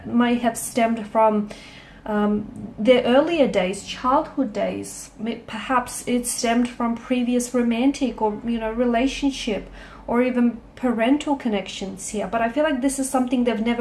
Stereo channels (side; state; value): both; identical; correlation 1.00